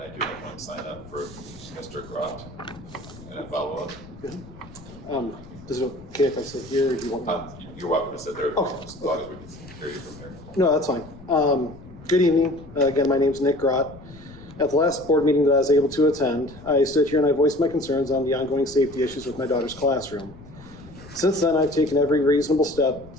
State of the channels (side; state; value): left; noise; rumble, 19 dB below the sound